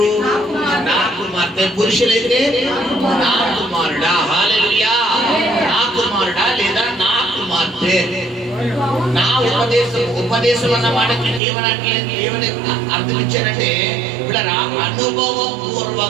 నా కుమార్తె. పురుషులైతే నా కుమారుడా. హల్లెలూయా. నా కుమారుడా లేదా నా కుమార్తె. నా ఉపదేశం అన్న మాటకి ఏమని అర్థం ఇచ్చారంటే ఇక్కడ అనుభవం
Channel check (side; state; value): left; drops out; at 11.4 s